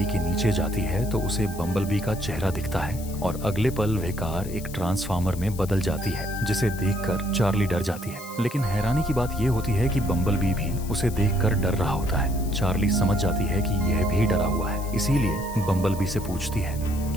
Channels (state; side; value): noise; left; hiss, 16 dB below the sound